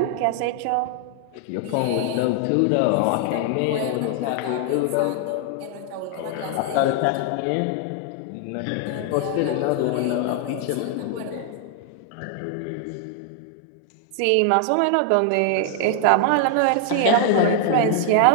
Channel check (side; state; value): both; different; correlation 0.00